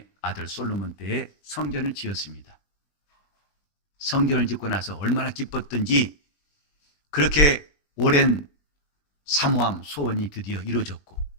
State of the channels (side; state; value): right; late; 20 ms